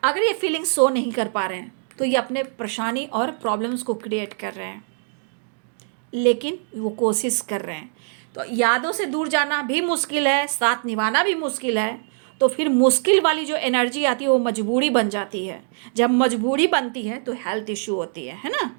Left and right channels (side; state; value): left; silent; digital silence